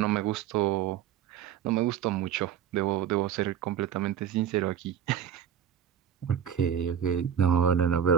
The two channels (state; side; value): quieter; left; 9.1 dB